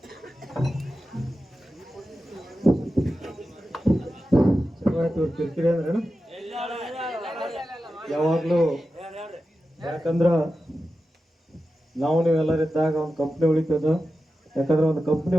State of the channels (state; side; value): normal; both; correlation 0.92